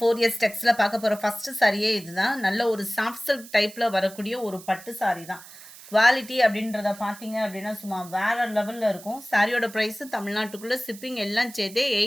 டெக்ஸ்ல பார்க்க போற ஃபர்ஸ்ட் சாரியே இதுதான். நல்ல ஒரு சாஃப்ட் சில்க் டைப்ல வரக்கூடிய ஒரு பட்டு சாரி தான். குவாலிட்டி அப்படின்றத பார்த்தீங்க அப்படின்னா சும்மா வேற லெவல்ல இருக்கும். சாரியோட ப்ரைஸ் தமிழ்நாட்டுக்குள்ள ஷிப்பிங் எல்லாம் சேர்த்தே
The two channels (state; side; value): noise; right; hiss, 18 dB below the sound